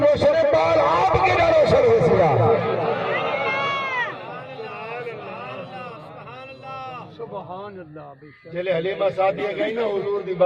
ہے بال آپ کے نہ روشن ہو سیا جلے حلیمہ سعدیہ گئی نا حضور دی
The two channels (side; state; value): both; identical; correlation 1.00